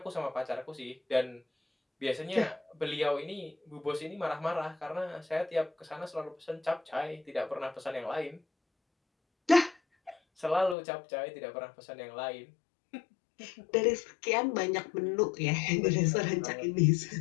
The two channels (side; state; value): right; drops out; at 10.8 s